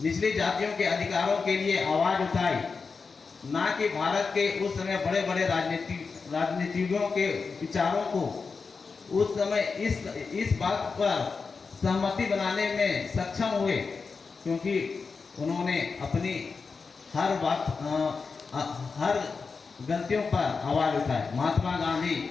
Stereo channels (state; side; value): quieter; right; 4.8 dB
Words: जातियों के अधिकारों के लिए आवाज उठाई, ना कि भारत के उस समय बड़े बड़े राजनीतिज्ञों के विचारों को उस समय इस बात पर सहमति बनाने में सक्षम हुए, क्योंकि उन्होंने अपनी हर गलतियों पर आवाज उठाई। महात्मा गांधी